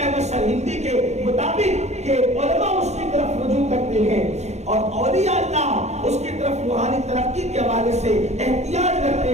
احمد سرہندی کے مطابق کہ علماء اس کی طرف رجوع کرتے ہیں اور اولیاء اللہ اس کی طرف روحانی ترقی کے حوالے سے احتیاج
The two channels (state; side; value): late; left; 0.32 ms